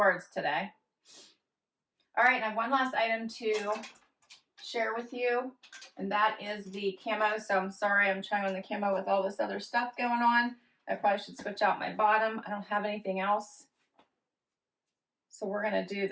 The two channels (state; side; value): identical; both; correlation 1.00